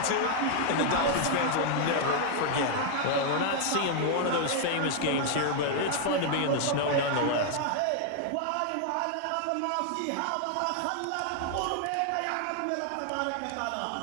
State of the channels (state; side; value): different; both; correlation 0.00